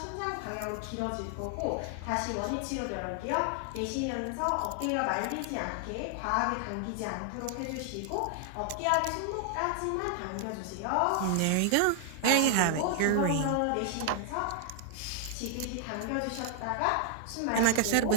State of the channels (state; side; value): different; both; correlation 0.00